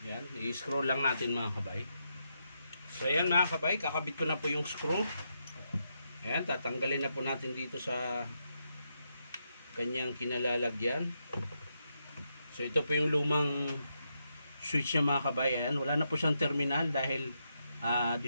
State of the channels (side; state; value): both; inverted; correlation -0.82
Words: Yan, i-screw lang natin mga kabay. So ayan mga kabay, kakabit ko na po yung screw. Ayan, tatanggalin na po natin dito sa kanyang kinalalagyan. So ito po yung lumang switch niya mga kabay. Ayan, wala na po siyang terminal dahil